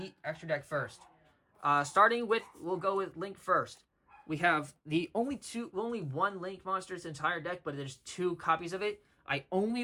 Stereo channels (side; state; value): both; identical; correlation 1.00